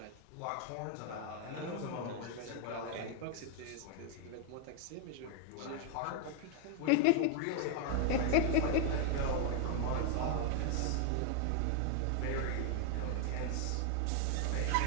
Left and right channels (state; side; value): different; both; correlation 0.00